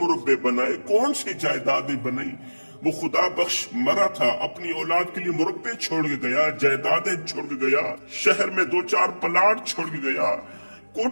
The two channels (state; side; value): inverted; both; correlation -1.00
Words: बनाए, कौन सी जायदादें बनाई? वो खुदा बख्श मरा था, अपनी औलाद के लिए मुरब्बे छोड़ के गया, जायदादें छोड़ के गया, शहर में 2-4 प्लाट छोड़ के गया,